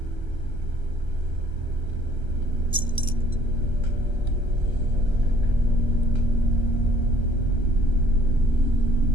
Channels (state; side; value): late; left; 1.3 ms